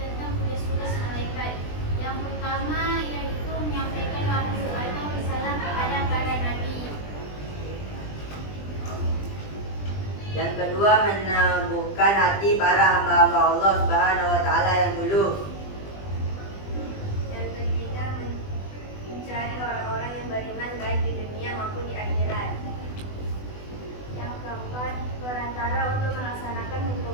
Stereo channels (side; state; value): right; late; 20 ms